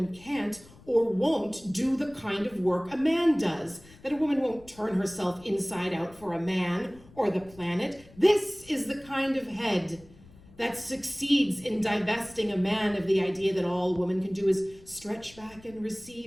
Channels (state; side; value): noise; left; rumble, 23 dB below the sound